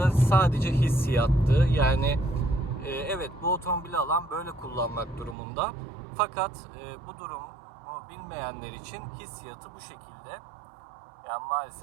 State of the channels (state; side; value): drops out; left; at 5.4 s